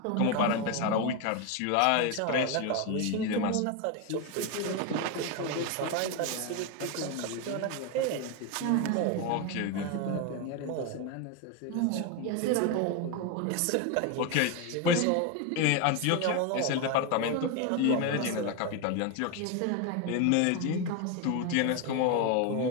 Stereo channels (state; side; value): different; both; correlation 0.02